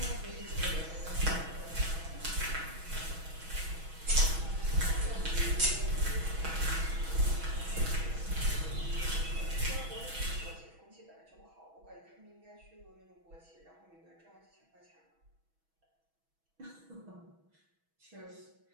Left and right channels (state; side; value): late; left; 6.2 ms